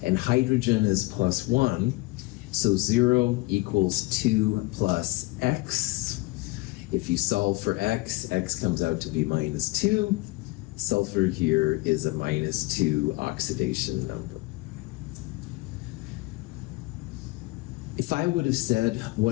And hydrogen is +1. So 0 equals 2 plus x. If you solve for x, x comes out to be -2. Sulfur here is a -2 oxidation number. If I would have said,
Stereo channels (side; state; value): right; quieter; 22.5 dB